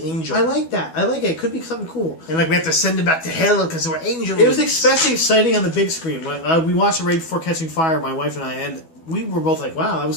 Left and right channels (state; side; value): late; right; 12 ms